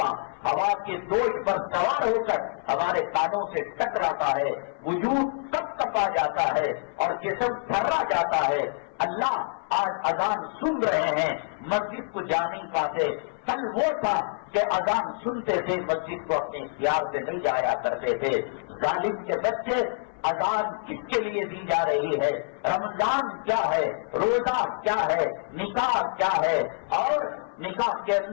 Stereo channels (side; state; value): right; silent; 60 dB below the other